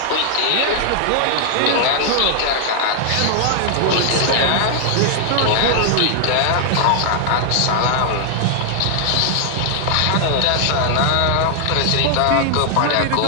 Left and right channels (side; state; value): both; different; correlation 0.00